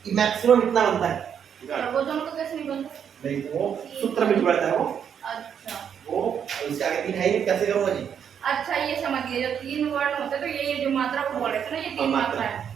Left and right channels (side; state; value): left; quieter; 8.1 dB